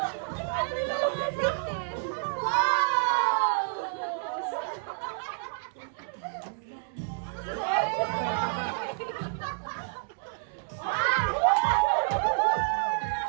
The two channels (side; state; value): left; silent; digital silence